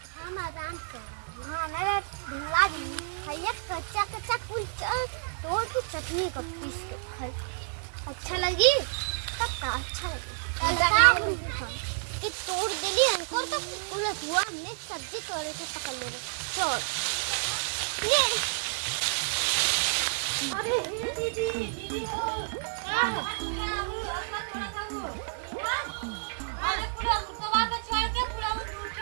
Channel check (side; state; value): left; silent; digital silence